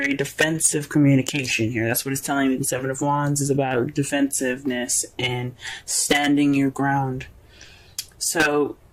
defensive communication here. That's what it's telling me. The 7 of Wands is about defensiveness and standing your ground. So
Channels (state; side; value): identical; both; correlation 1.00